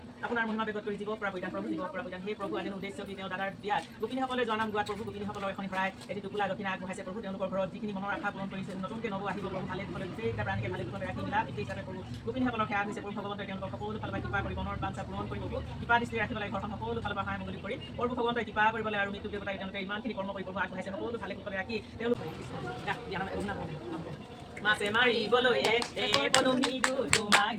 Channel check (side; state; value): both; identical; correlation 1.00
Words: আপোনাৰ মহিমা বেগত কৰি জীৱ পৰা পৰিধান প্ৰভু জীৱ পৰা পৰিধান সেই প্ৰভু আজিৰ উদ্দেশ্য কি তেওঁ দাদাৰ বিয়াত গোপিনীসকলে জনাম গোৱাত প্ৰভু গোপিনীসকলৰ এখন শৰাই এটি টোপোলা দক্ষিণা আগবঢ়াইছে প্ৰভু তেওঁলোকৰ ঘৰত যিখিনি মনৰ আশা পূৰণ কৰিছে নতুনকৈ নব আহিব প্ৰভু ভালে কুশলে গোটেইটা প্ৰাণীকে ভালে কুশলে ৰাখি মিলা পিতৃ হিচাপে প্ৰভু গোপিনীসকলৰ সেৱা হৈছে প্ৰভু ভগৱন্তই তেওঁলোকৰ সকলো ফালৰ পৰা কৃপা কৰি মনৰ বাঞ্ছা পূৰণ কৰি প্ৰভু কৃপা দৃষ্টি ৰাখিব লাগে ঘৰখন সকলো ফালৰ পৰা সহায় মঙ্গল কৰি প্ৰভু ভগৱন্তই কৃপা কৰিবলৈ আৰু মৃত্যু দেৱতাই তেওঁলোকে ইমানখিনি কৰ্ম কৰি প্ৰভু আগবঢ়াইছে সকলো ভালে কুশলে ৰাখি তেওঁলোকে মাছে মাৰিবলৈ পদুমীটো তোমাক